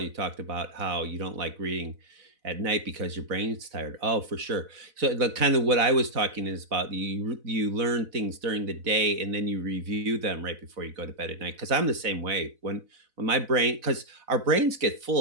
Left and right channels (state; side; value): late; left; 4.0 ms